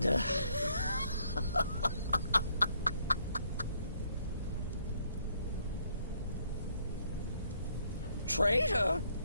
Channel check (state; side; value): inverted; both; correlation -0.69